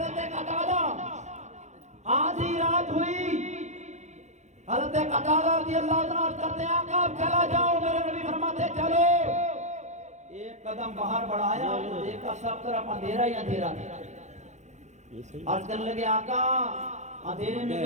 قتادہ آدھی رات ہوئی، حضرت قتادہ رضی اللہ عنہ کرتے ہیں آقا اب چلا جاؤ، میرے نبی فرماتے چلو۔ ایک قدم باہر بڑھایا تو دیکھا سب طرف اندھیرا ہی اندھیرا تھا۔ عرض کرنے لگے آقا اندھیرے میں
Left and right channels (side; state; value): left; late; 0.34 ms